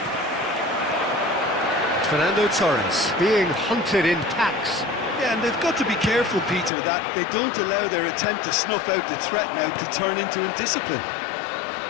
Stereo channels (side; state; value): right; drops out; at 6.7 s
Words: Fernando Torres being hunted in packs. Yeah, and they've got to be careful, Peter, that they don't allow their attempt to snuff out the threat now to turn into indiscipline.